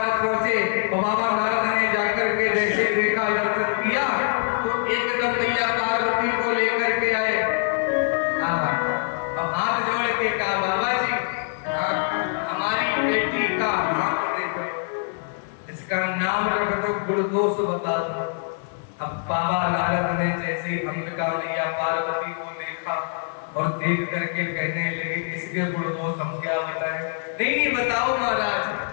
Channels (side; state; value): right; silent; 62 dB below the other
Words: पहुंचे, तो बाबा नारद ने जाकर के जैसे देखा, दर्शन किया, तो एकदम मैया पार्वती को लेकर के आए। अब हाथ जोड़ के कहा, बाबा जी हमारी बेटी का हाथ देखो, इसका नाम रख दो, गुण दोष बता दो। अब बाबा नारद ने जैसे ही अंबिका मैया पार्वती को देखा और देख करके कहने लगे, इसके गुण दोष हम क्या बताएं? नहीं बताओ महाराज।